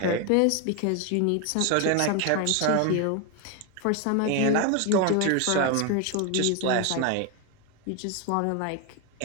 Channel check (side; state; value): both; different; correlation 0.01